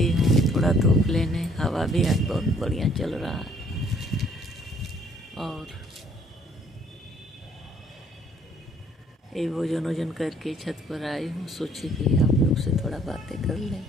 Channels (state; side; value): normal; both; correlation 0.61